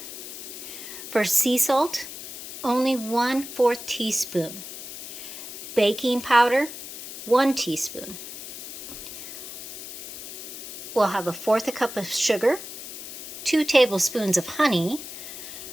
For sea salt, only 1/4 teaspoon. Baking powder, 1 teaspoon. We'll have 1/4 cup of sugar, 2 tablespoons of honey,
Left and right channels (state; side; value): noise; left; hiss, 10 dB below the sound